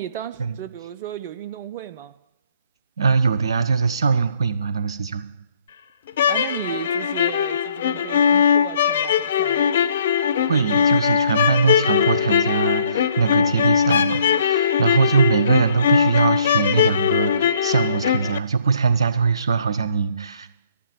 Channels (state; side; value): inverted; both; correlation -0.64